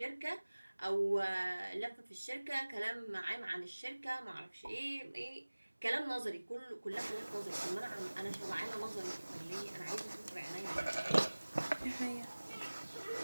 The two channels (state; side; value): inverted; both; correlation -1.00